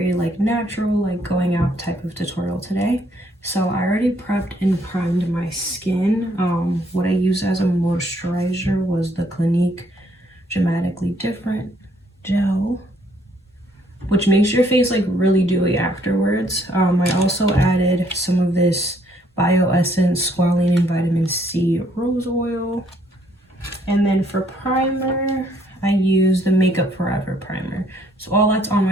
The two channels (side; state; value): both; normal; correlation 0.67